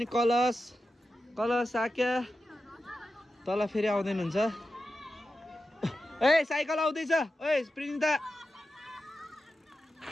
कलश साक्या तल फेरि आउँदैन हुन्छ ए साइकल आउँदैछ ओए प्रिन्ता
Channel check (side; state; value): both; normal; correlation 0.91